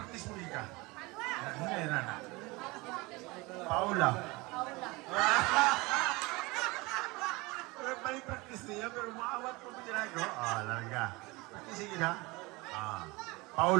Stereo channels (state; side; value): quieter; left; 23.8 dB